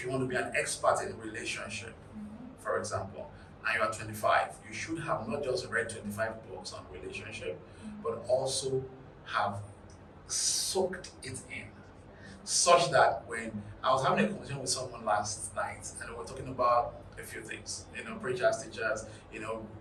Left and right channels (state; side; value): identical; both; correlation 1.00